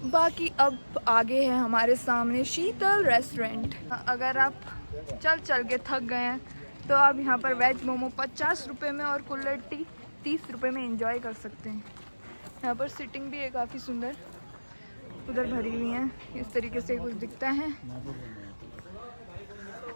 बाकी अब आगे है हमारे सामने शीतल रेस्टोरेंट। अगर आप चल के थक गए हैं तो आप यहाँ पर वेज मोमो 50 रुपये में और कुल्हड़ टी 30 रुपये में एंजॉय कर सकते हैं। यहाँ पर सिटिंग भी है काफ़ी सुंदर, उधर भरी हुई है। इस तरीके से कुछ दिखता है।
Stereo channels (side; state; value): both; inverted; correlation -1.00